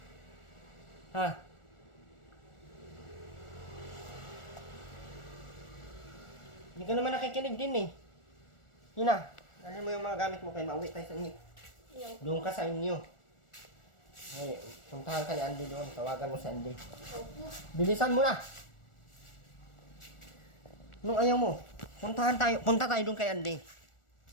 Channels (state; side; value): late; right; 1.4 ms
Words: Ha? Hindi ka naman nakikinig din eh. Yun na. Dalhin mo yung mga gamit mo kay mauwi tayo sa inyo. Ayaw. Doon ka sa inyo. Ay, puntahan ka ni Andy doon. Tawagan mo si Andy. Opo. Bilisan mo na! Nung ayaw mo, punta tayo doon kay Andy.